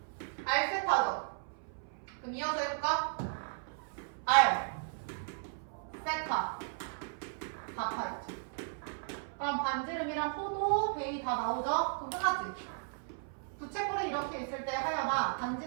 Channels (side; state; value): left; silent; 54 dB below the other